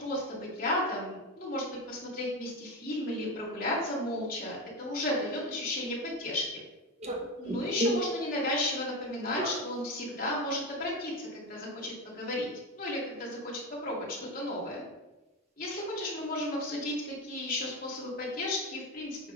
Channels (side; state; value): both; normal; correlation 0.18